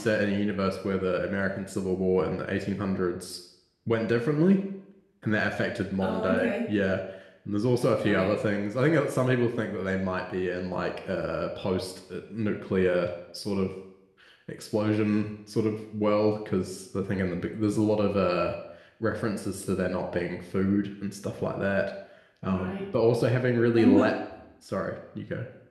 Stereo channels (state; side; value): identical; both; correlation 1.00